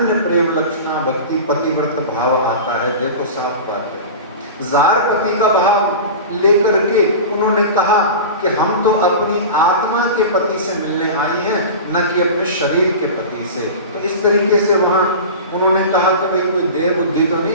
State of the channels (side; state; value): both; inverted; correlation -0.31